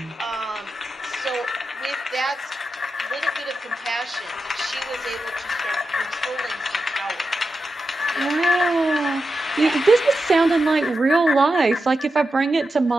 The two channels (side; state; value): both; normal; correlation 0.89